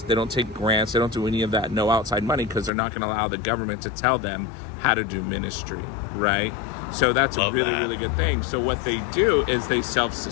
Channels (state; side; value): drops out; right; at 2.7 s